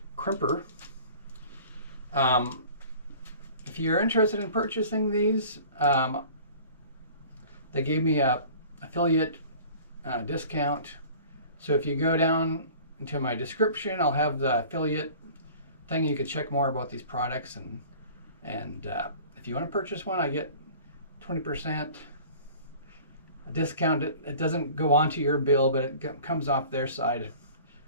crimper. If you're interested in purchasing these, they gave me a affiliate discount. So if you go down into my description, I'll have the affiliate thing. You can check more about these products, and if you want to purchase one, I get 20% discount. It doesn't go onto your bill, but it comes off their side.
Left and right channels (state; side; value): inverted; both; correlation -0.45